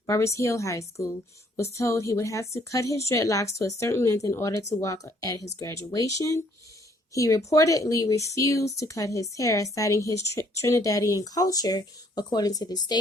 High School, was told he would have to cut his dreadlocks to a certain length in order to walk at his graduation. He reportedly refused to cut his hair, citing his Trinidadian culture, according to the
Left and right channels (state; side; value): normal; both; correlation 0.64